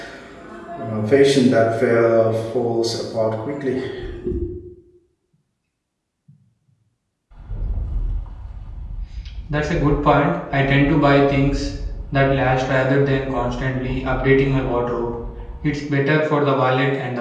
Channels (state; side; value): identical; both; correlation 1.00